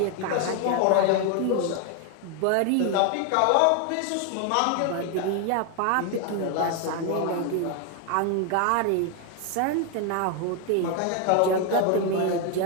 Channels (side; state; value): both; different; correlation 0.01